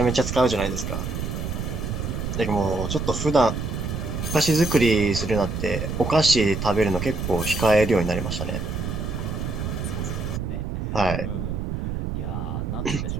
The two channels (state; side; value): noise; right; rumble, 3 dB below the sound